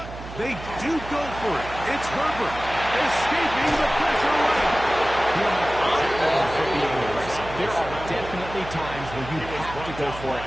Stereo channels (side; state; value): right; noise; hum, 12 dB below the sound